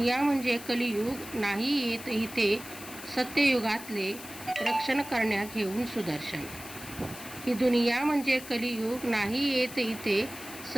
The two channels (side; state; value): left; noise; hiss, 14 dB below the sound